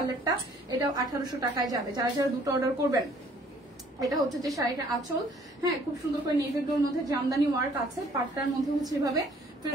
এটাও 1800 টাকায় যাবে। যারা যারা দুটো অর্ডার করবেন, এটা হচ্ছে যে শাড়িটার আঁচল, হ্যাঁ খুব সুন্দর করে নেভি ব্লুর মধ্যে জামদানি ওয়ার্ক আছে, পাটটার মধ্যে হচ্ছে এভাবে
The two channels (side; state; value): both; normal; correlation 0.59